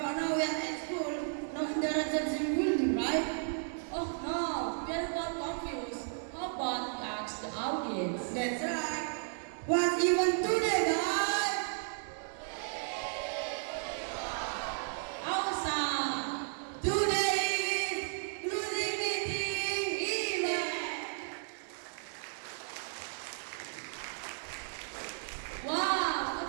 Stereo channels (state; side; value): silent; left; digital silence